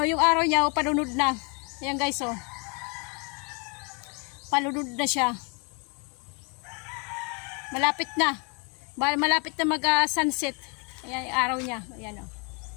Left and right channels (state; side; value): quieter; right; 33.8 dB